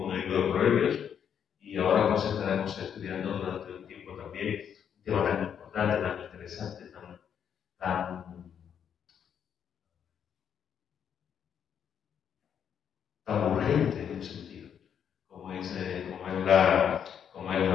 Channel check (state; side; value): quieter; right; 8.3 dB